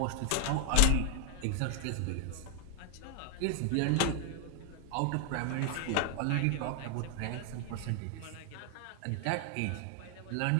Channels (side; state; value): both; different; correlation 0.00